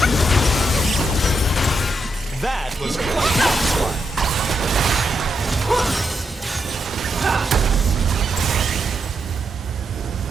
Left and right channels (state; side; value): normal; both; correlation 0.82